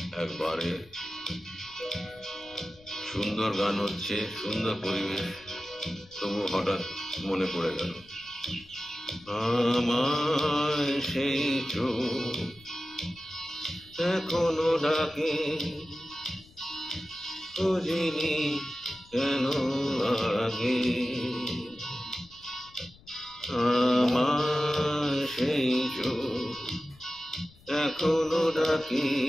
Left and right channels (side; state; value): left; noise; rumble, 26 dB below the sound